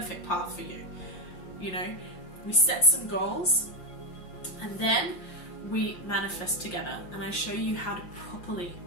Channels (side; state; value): right; late; 5.7 ms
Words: path for you. You know, we set some goals and then we manifest together, and I show you how to properly